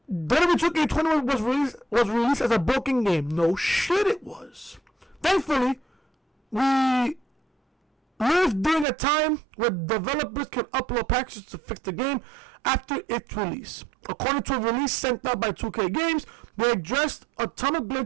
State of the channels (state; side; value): drops out; left; at 8.8 s